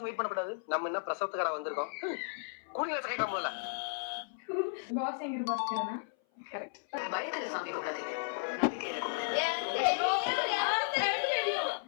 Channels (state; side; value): silent; right; 55 dB below the other